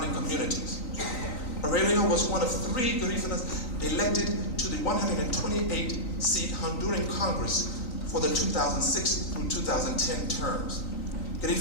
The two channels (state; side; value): late; right; 3.9 ms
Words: communities. Aurelio was one of 3 Garifunas elected to the 128-seat Honduran Congress for the 2006 through 2010 terms.